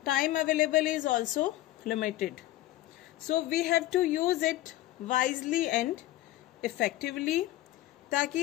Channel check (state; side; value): quieter; right; 15.8 dB